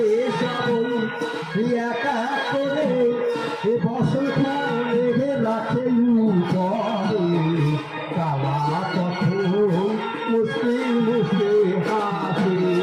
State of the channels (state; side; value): identical; both; correlation 1.00